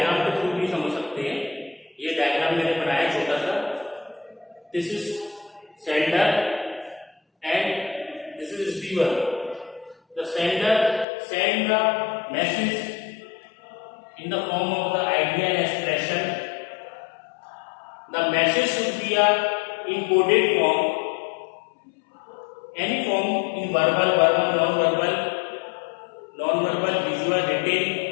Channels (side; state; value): right; drops out; at 11.1 s